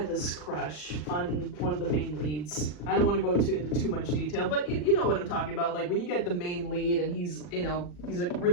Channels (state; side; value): late; right; 40 ms